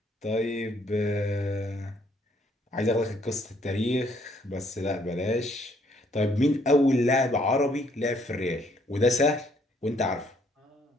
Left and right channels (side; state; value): both; normal; correlation 0.67